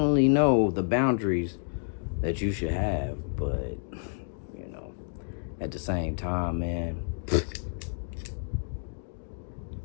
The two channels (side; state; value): right; silent; digital silence